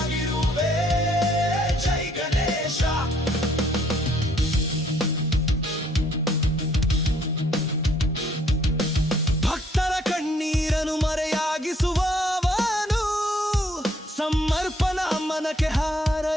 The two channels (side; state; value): both; normal; correlation 0.64